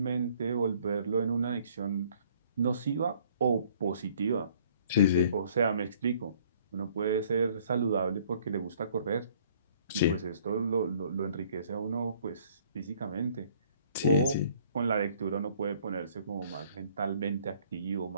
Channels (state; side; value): inverted; both; correlation -0.59